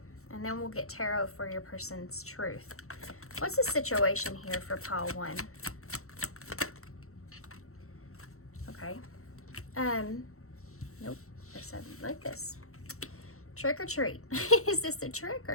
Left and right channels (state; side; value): late; right; 0.63 ms